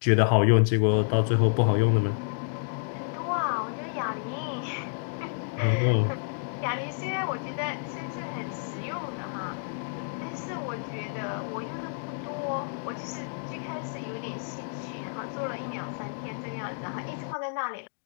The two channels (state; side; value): silent; right; digital silence